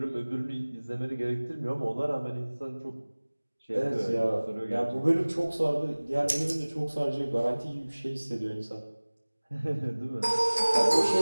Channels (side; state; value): both; inverted; correlation -1.00